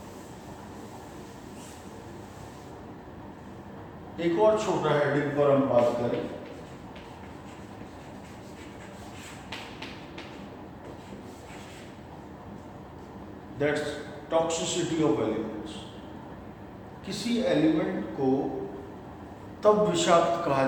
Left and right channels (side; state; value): both; identical; correlation 1.00